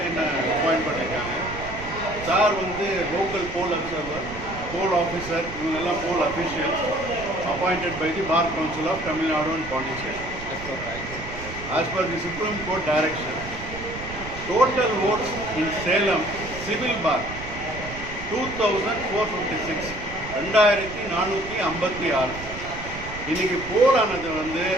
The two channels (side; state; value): right; noise; rumble, 12 dB below the sound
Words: பண்ணிருக்காங்க. Sir வந்து local poll observer, poll officer, இவங்க poll officials appointed by the Bar Council of Tamil Nadu and Puducherry. As per the Supreme Court direction, total votes in Salem civil bar 2456, 2456. இன்னைக்கு போல் ஆனது வந்து